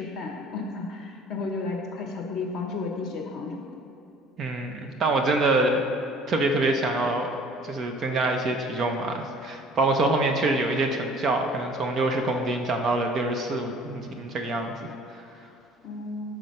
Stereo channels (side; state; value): both; normal; correlation 0.51